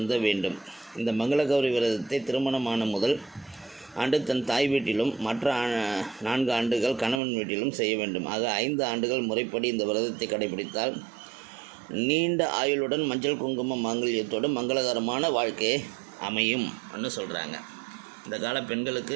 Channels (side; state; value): left; drops out; at 7.2 s